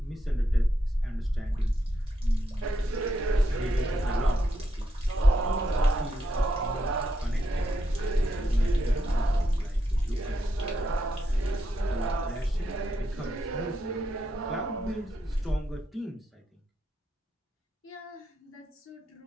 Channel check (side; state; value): both; normal; correlation 0.81